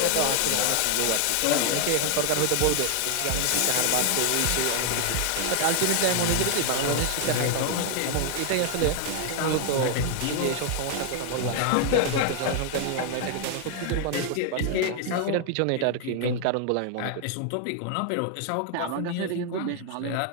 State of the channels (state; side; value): different; both; correlation 0.00